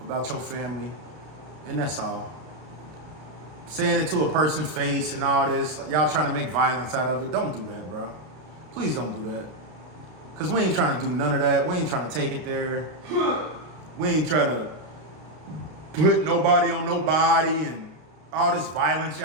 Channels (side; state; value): left; late; 33 ms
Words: your family. And that's all. Saying it to a person's face and all this, y'all trying to make violence out of it. Don't do that, bro. Please don't do that. Because we ain't trying to do none of that. We ain't trying to take it there. We ain't trying to put nobody on nobody and all this violence